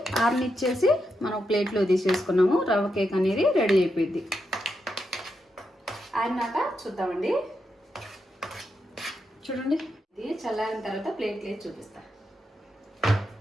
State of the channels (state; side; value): normal; both; correlation 0.84